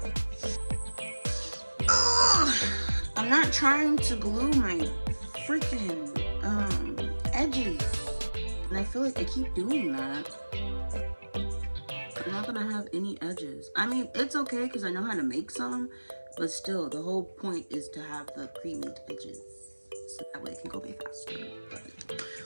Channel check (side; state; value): both; inverted; correlation -1.00